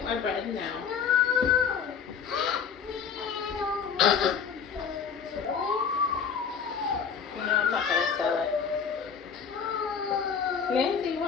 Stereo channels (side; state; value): right; quieter; 6.7 dB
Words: my bread now. No, I'm not gonna sell it. Nancy,